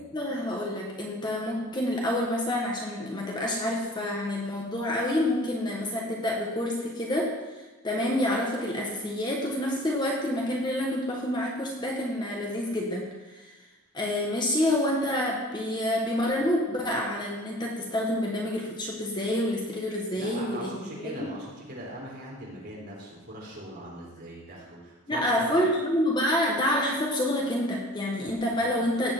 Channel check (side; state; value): both; normal; correlation 0.47